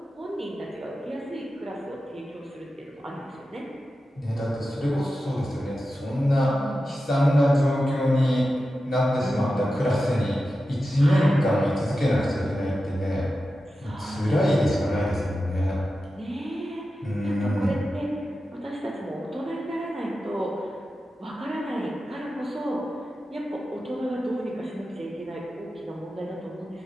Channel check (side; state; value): both; normal; correlation 0.92